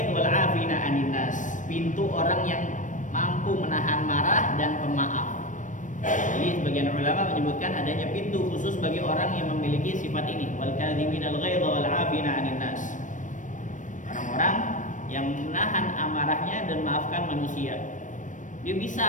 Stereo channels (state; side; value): late; right; 0.37 ms